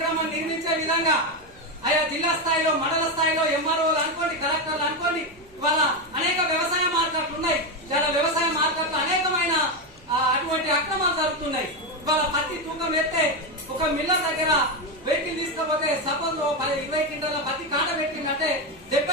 నిర్మించే విధంగా ఆయా జిల్లా స్థాయిలో, మండల స్థాయిలో ఎంఆర్ఓలు అనుకోండి, కలెక్టర్లు అనుకోండి, ఇవాళ అనేక వ్యవసాయ మార్కెట్లు ఉన్నాయి. చాలా వ్యవసాయ మార్కెట్లు అనేకమైన అటువంటి అక్రమాలు జరుగుతున్నాయి. ఇవాళ పత్తి తూకం ఎత్తే ఒక మిల్లర్ దగ్గర వెహికల్ తీసుకపోతే సపోజ్ 20 క్వింటాల పత్తి కాట పెట్టిందంటే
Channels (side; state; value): right; noise; hum, 29 dB below the sound